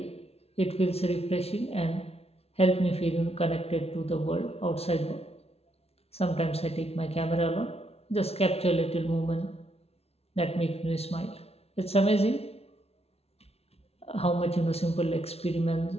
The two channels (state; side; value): late; right; 0.30 ms